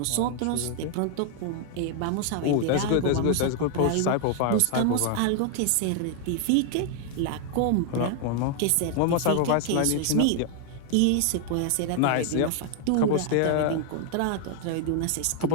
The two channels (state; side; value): different; both; correlation 0.00